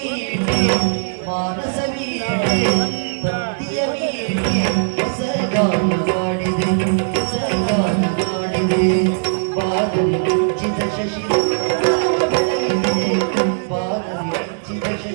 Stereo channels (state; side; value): silent; left; digital silence